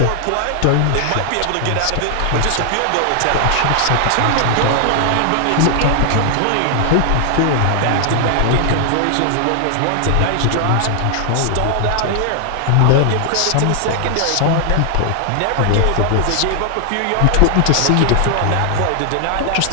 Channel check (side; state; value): both; different; correlation 0.00